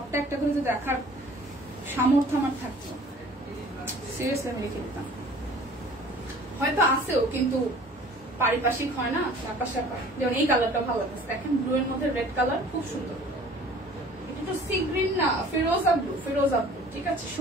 একটা করে যদি দেখার সামর্থ্য আমার থাকতো, সিরিয়াসলি আমি রেখে দিতাম। হয়তো আসেও, কিন্তু পারিপার্শ্বিক হয় না, ব্যাপার স্যাপার। যেমন এই কালারটা ভালো লাগছে, দেখেন ব্লু এর মধ্যে রেড কালার, খুব সুন্দর। এটা তো সি গ্রিন না, ফিরোজা ব্লু, ফিরোজা ব্লু, ঠিক আছে,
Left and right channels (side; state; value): both; normal; correlation 0.49